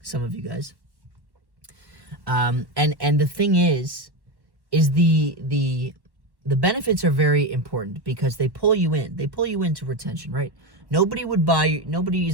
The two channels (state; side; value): late; left; 1.1 ms